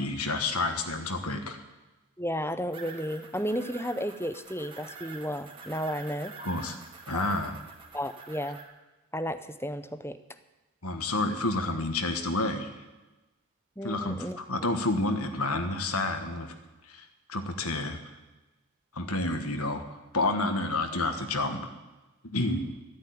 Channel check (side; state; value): both; normal; correlation 0.38